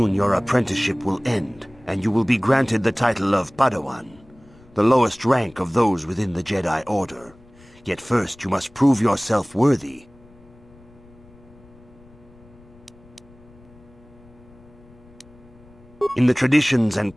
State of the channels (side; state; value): left; noise; rumble, 26 dB below the sound